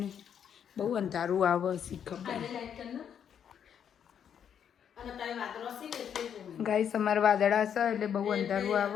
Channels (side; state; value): right; quieter; 8.4 dB